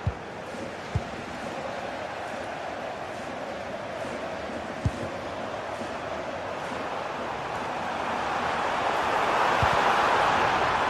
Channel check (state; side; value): identical; both; correlation 1.00